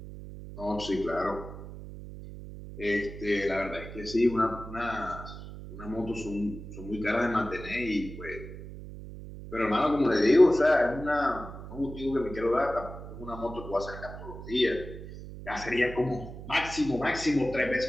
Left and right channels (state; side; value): noise; right; hum, 12 dB below the sound